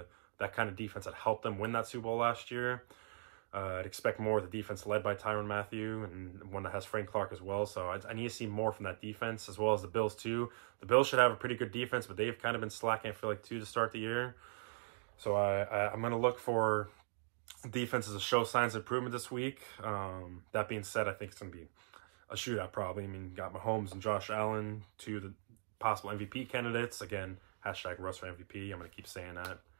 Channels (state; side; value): silent; left; digital silence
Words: that kind of defense that helped them win that Super Bowl last year. I'd expect more of the defense led by Tyrann Mathieu and one that has Frank Clark as well. So I need to see more from that defense as well as the Bills too. The Bills should have a pretty good defense, but they've kind of been slacking, I feel like, too, to start the year. So I'm going to look for defenses to show signs of improvement this week. That being said, I think it's going to be a shootout probably. I mean, got Mahomes and Josh Allen, 2 of the possible MVP candidates. Again, hashtag Russ for MVP. I'm going to keep saying that.